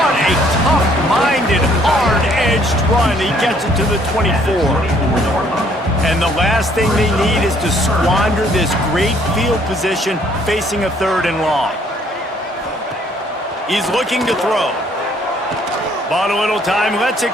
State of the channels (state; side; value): normal; both; correlation 0.63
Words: a tough-minded, hard-edged run. He gets it to the 24. And the last thing they need is to squander this great field position facing a 3rd and long. He's looking to throw. Bought a little time, lets it